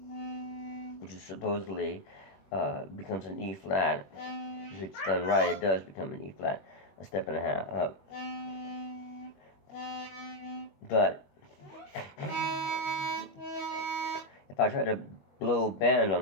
which is supposedly becomes an E flat. If it's done right, it does become an E flat, a step and a half up. But if I try to blow bend on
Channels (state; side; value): late; right; 21 ms